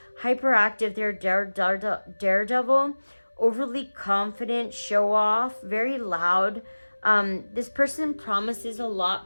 Hyperactive, they're daredevil, overly confident, show off, very loud. This person promises a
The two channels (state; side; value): inverted; both; correlation -1.00